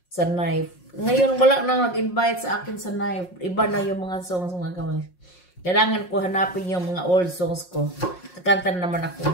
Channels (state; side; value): late; right; 5.6 ms